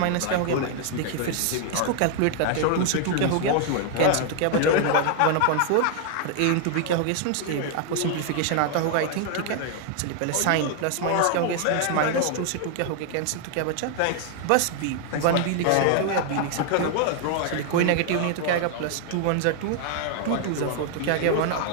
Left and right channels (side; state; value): both; different; correlation 0.00